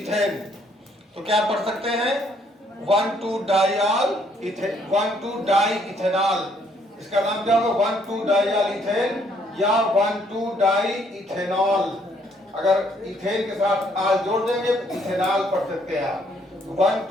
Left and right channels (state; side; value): normal; both; correlation 0.67